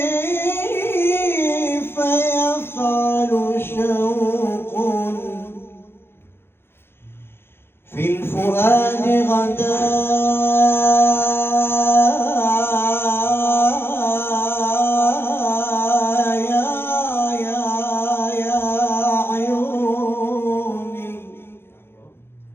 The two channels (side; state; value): right; late; 0.11 ms